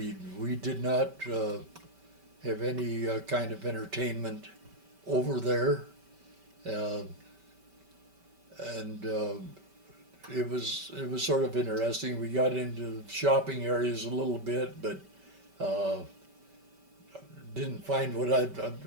did not have any kind of entertainment over there, and it was sort of interesting. We got into shopping areas a little bit, but didn't find what a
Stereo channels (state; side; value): late; left; 5.2 ms